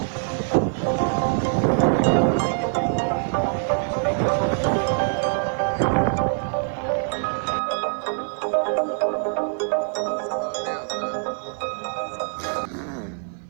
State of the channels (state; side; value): silent; left; 63 dB below the other